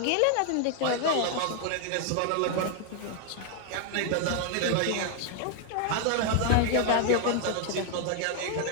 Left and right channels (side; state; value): both; different; correlation 0.00